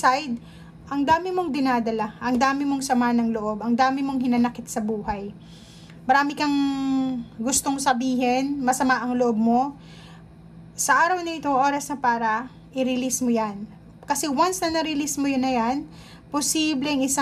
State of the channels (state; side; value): identical; both; correlation 1.00